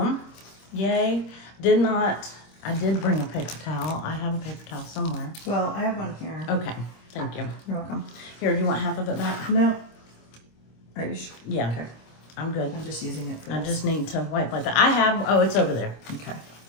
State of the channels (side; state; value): right; late; 26 ms